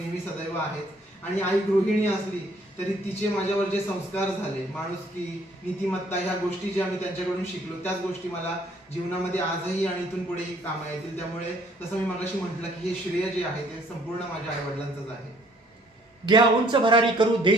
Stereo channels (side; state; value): both; normal; correlation 0.61